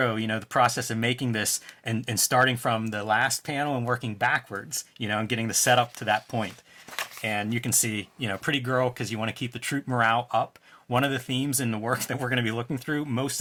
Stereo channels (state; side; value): identical; both; correlation 1.00